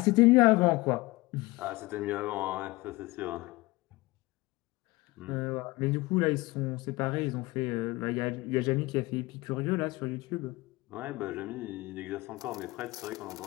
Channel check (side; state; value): right; quieter; 21.6 dB